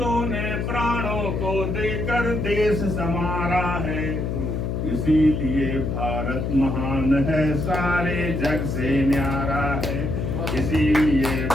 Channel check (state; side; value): noise; left; hum, 1 dB below the sound